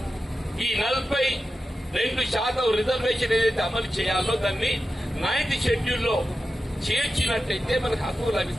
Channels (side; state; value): both; normal; correlation 0.91